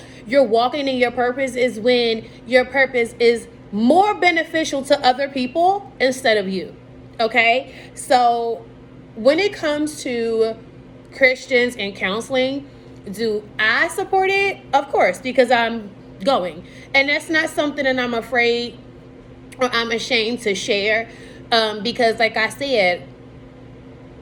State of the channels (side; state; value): both; identical; correlation 1.00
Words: you're walking in your purpose, is when your purpose is more beneficial to other people instead of you. Okay? So when it comes to Christians and counseling, do I support it? Of course, because I'm going. And that's not something that I'm afraid or I'm ashamed to share, because like I said,